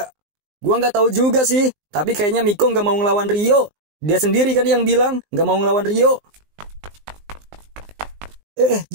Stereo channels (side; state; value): left; late; 19 ms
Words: Gua nggak tahu juga sih, tapi kayaknya Miko nggak mau ngelawan Rio. Dia sendiri kan yang bilang nggak mau ngelawan Rio.